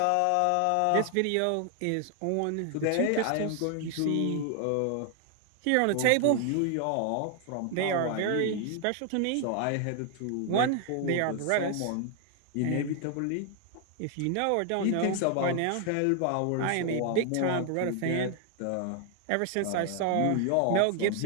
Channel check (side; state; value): both; different; correlation 0.00